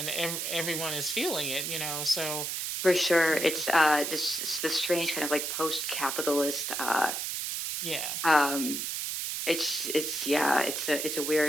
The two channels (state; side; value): noise; right; hiss, 2 dB below the sound